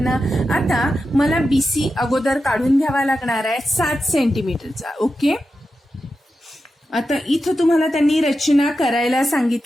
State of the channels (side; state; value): both; normal; correlation 0.90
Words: आता मला BC अगोदर काढून घ्यावा लागणार आहे 7 सेंटीमीटरचा. ओके. आता इथं तुम्हाला त्यांनी रचना करायला